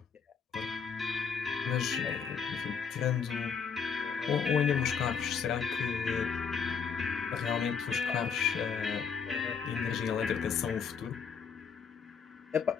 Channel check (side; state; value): right; quieter; 6.3 dB